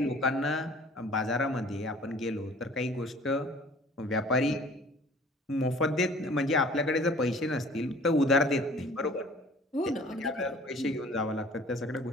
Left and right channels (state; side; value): normal; both; correlation 0.49